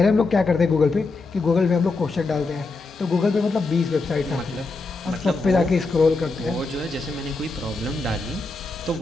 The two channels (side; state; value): right; quieter; 3.6 dB